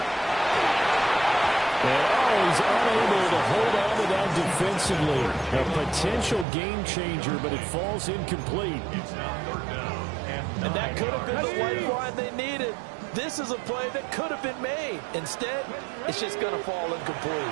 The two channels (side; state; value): left; drops out; at 6.5 s